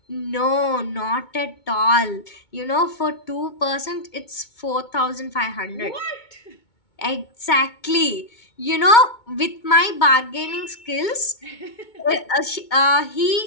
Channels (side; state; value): right; late; 2.2 ms